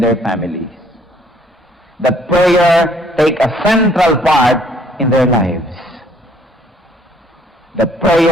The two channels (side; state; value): both; normal; correlation 0.62